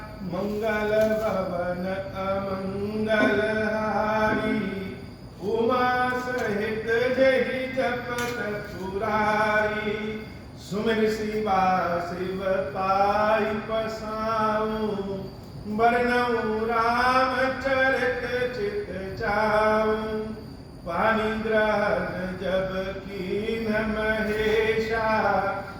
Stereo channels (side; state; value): both; identical; correlation 1.00